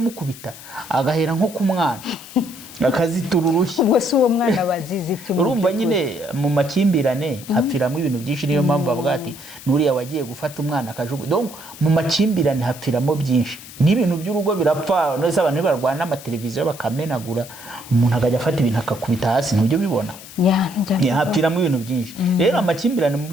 agahera nko ku mwana akazitura urushyi. Ubwo si uwo mwana bazizi iki? Urumva nyine mu makimbirane hapfiramo ibintu byinshi. Niyo mpamvu bavuga ati nuriya wagiye gufata umwana akajugu. Donc mu makimbirane hapfiramo byinshi, n'ibintu by'urugo birapfa. Nose abantu barwana amateleviziyo bakamenagura, umuntu akajya afata ibintu akakubita hasi, ntujye bibona. Hapfiramo ibintu byinshi. Rero amakimbirane mu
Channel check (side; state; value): left; noise; hiss, 16 dB below the sound